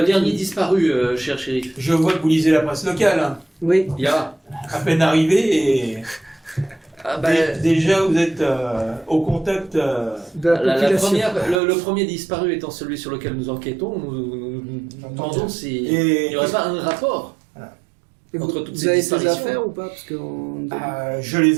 dernier disparu, cher shérif. Je vois que vous lisez la presse locale. Hein. Oui. Il y a. À peine arrivé et Ah, bah, déjà vous êtes au contact. De la la population. première, le premier disparu étant celui sur lequel nous enquêtons, nous demandons s'il Et n'y aurait pas un rapport. Et vous, entre toutes vous ces avez ces disparitions. affaires ou pas? Parce que je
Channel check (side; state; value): left; drops out; at 11.6 s